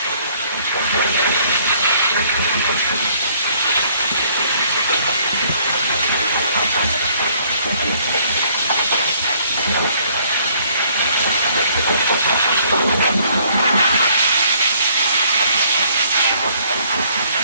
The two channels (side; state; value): both; inverted; correlation -0.63